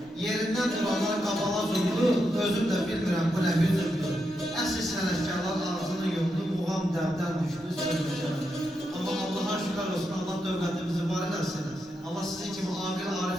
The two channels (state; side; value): normal; both; correlation 0.84